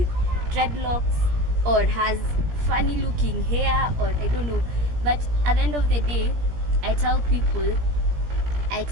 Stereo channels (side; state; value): left; late; 17 ms